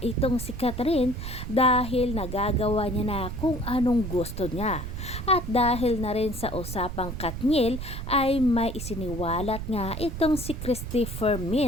si Catherine dahil nagagawa niya na kung anong gusto niya. At dahil na rin sa usapang Katniel ay may isiniwalat nga itong si Christopher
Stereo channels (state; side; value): noise; right; rumble, 7 dB below the sound